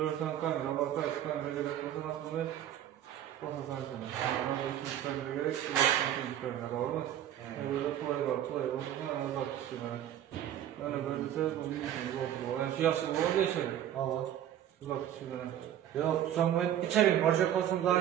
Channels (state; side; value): quieter; left; 11.2 dB